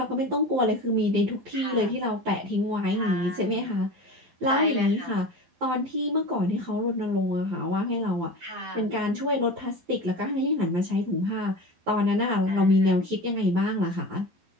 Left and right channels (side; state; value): left; late; 12 ms